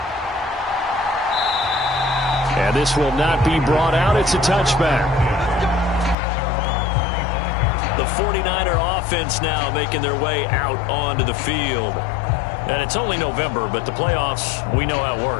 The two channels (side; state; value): right; drops out; at 6.2 s